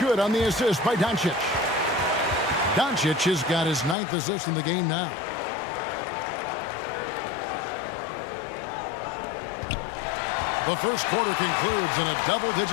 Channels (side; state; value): right; drops out; at 4.0 s